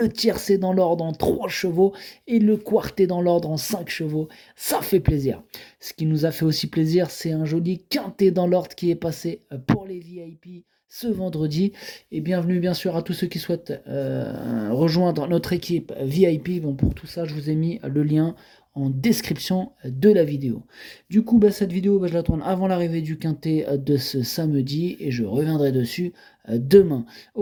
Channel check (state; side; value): identical; both; correlation 1.00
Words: tiercé dans l'ordre en 3 chevaux et le quarté dans l'ordre en 5 chevaux. Ça fait plaisir. Ce qui nous a fait aussi plaisir, c'est un joli quintet dans l'ordre qui est passé pour les VIP ce vendredi. Et bienvenue bien sûr à tous ceux qui souhaitent rejoindre notre équipe VIP. Bon, pour tout ça, je vous ai mis le lien en description de la vidéo. Du coup, cette vidéo, je la tourne avant l'arrivée du quintet de ce samedi et je reviendrai dessus demain.